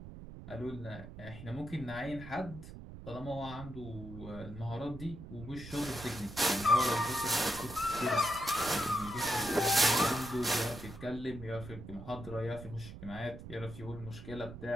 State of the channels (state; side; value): noise; right; rumble, 12 dB below the sound